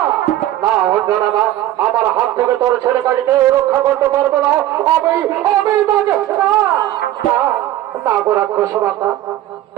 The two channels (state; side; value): quieter; left; 13.9 dB